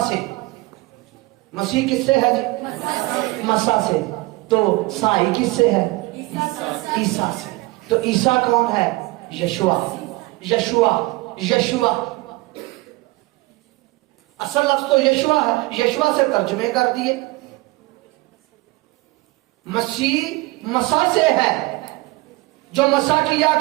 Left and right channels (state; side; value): quieter; left; 22.0 dB